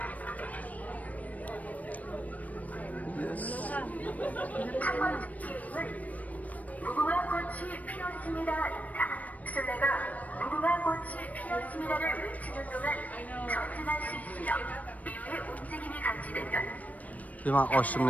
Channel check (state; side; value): late; right; 0.072 ms